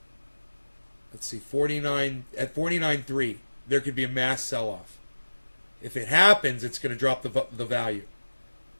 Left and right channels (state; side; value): inverted; both; correlation -1.00